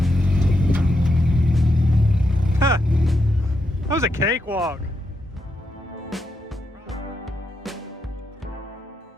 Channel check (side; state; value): both; normal; correlation 0.83